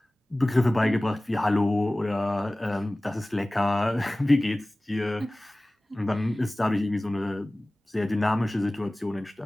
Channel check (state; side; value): normal; both; correlation 0.98